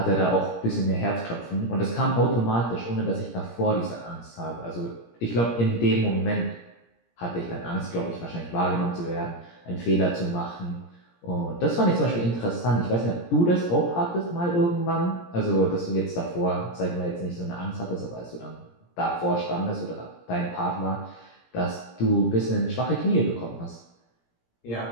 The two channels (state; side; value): late; right; 17 ms